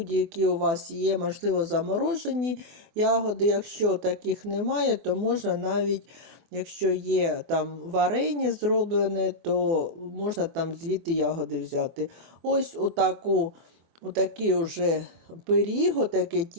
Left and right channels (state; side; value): late; left; 24 ms